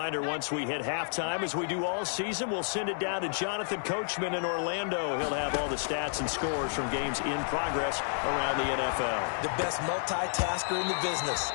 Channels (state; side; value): silent; right; digital silence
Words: once we hit halftime, as we do all season, we'll send it down to Jonathan Coachman in Orlando. He'll have all the stats and scores from games in progress around the NFL. The best multitasker in the business,